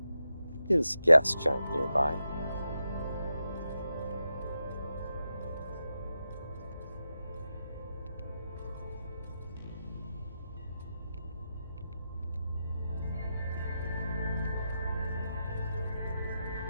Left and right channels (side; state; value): both; inverted; correlation -0.88